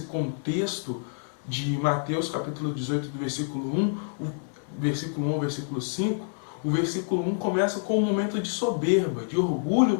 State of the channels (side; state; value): right; silent; digital silence